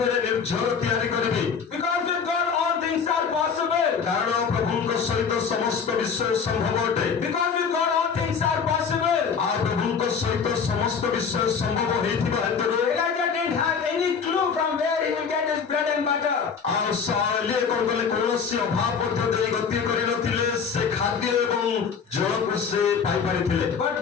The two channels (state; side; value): quieter; right; 6.2 dB